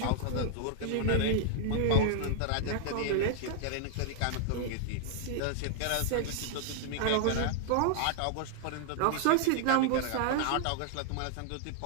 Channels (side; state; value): both; different; correlation 0.00